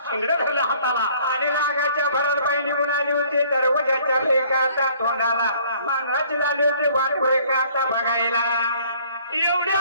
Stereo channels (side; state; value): both; inverted; correlation -0.58